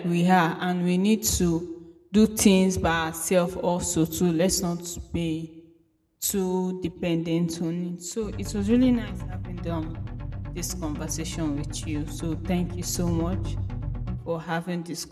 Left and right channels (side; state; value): both; identical; correlation 1.00